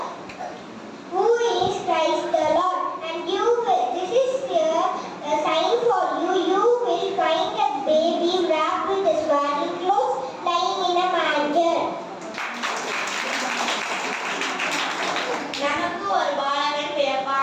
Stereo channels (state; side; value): identical; both; correlation 1.00